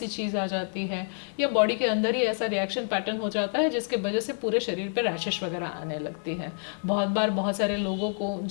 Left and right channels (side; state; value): right; silent; digital silence